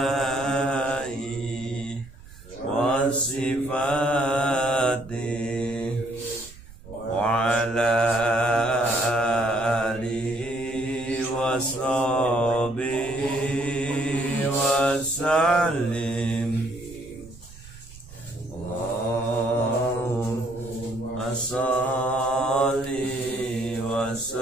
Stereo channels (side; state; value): right; noise; rumble, 19 dB below the sound